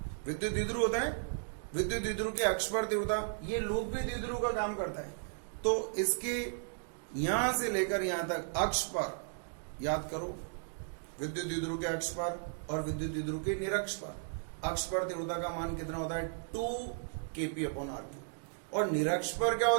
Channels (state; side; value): silent; left; digital silence